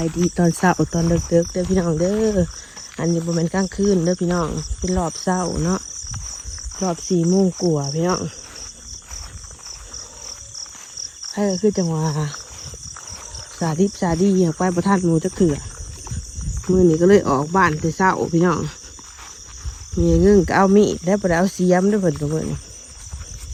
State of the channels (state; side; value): identical; both; correlation 1.00